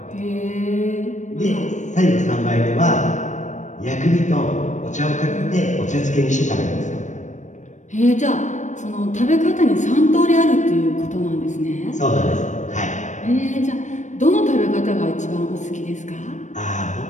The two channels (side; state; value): right; late; 0.35 ms